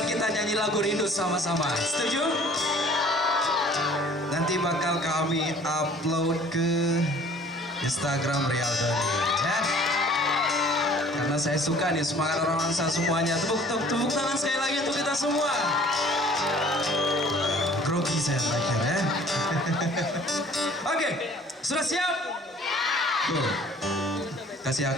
kita nyanyi lagu Rindu sama-sama. Setuju? Nanti bakal kami upload ke Instagram Rial Doni ya. Karena saya suka nih semangat orang Langsa semuanya. Tepuk tangan sekali lagi untuk kita semua. Grogi saya terakhir ya. Oke, sudah siap? Tuh. Kasih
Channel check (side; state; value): both; normal; correlation 0.52